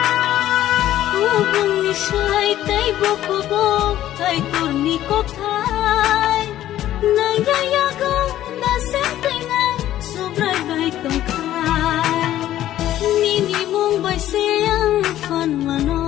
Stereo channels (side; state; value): right; quieter; 13.0 dB